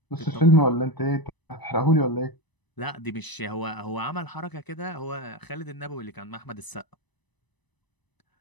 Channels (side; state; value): right; late; 1.0 ms